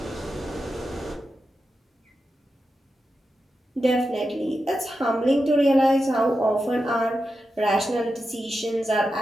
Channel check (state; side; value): normal; both; correlation 0.90